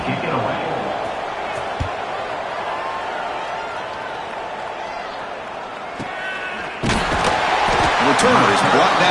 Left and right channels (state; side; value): identical; both; correlation 1.00